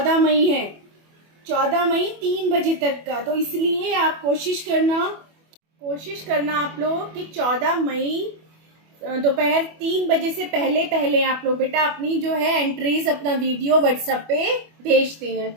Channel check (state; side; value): late; left; 25 ms